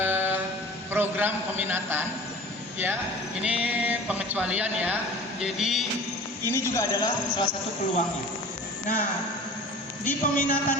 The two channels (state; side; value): normal; both; correlation 0.41